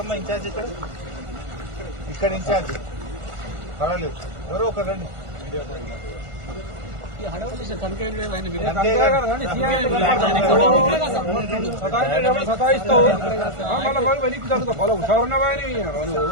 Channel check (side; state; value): left; late; 1.5 ms